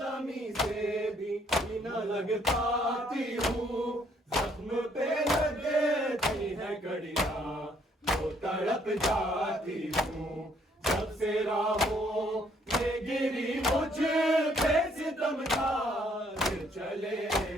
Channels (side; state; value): both; normal; correlation 0.66